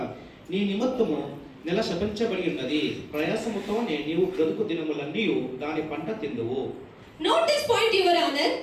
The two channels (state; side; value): identical; both; correlation 1.00